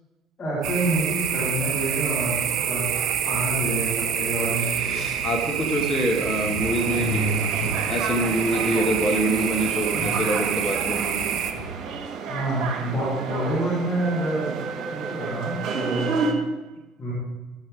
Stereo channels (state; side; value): quieter; left; 3.3 dB